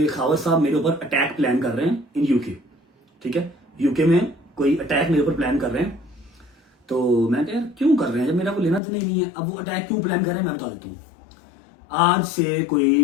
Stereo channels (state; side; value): drops out; right; at 8.8 s